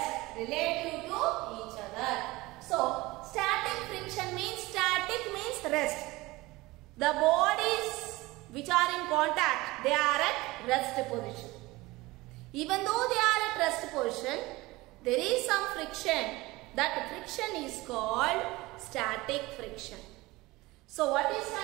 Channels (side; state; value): left; quieter; 20.7 dB